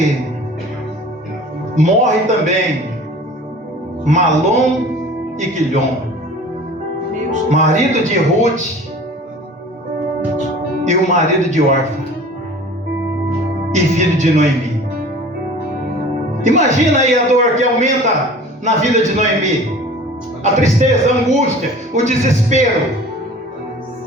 morre também Malom e Quilhom, marido de Ruth e o marido de Orfa, e filho de Noemi. Imagina aí a dor que aumenta na vida de Noemi, a tristeza, a angústia, o desespero,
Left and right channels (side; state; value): both; normal; correlation 0.43